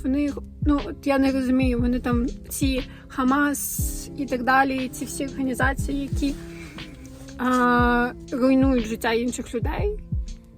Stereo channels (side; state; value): both; identical; correlation 1.00